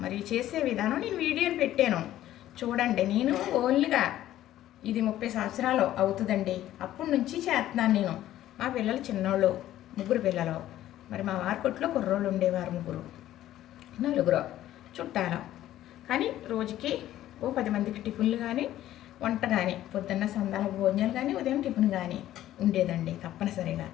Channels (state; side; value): quieter; right; 13.3 dB